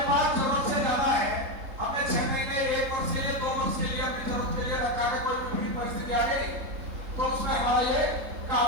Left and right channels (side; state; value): left; late; 3.7 ms